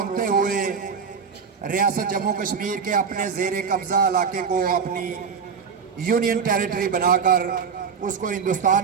ہوئے ریاست جموں کشمیر کے اپنے زیر قبضہ علاقے کو اپنی یونین ٹیریٹری بنا کر اس کو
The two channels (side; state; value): left; quieter; 6.2 dB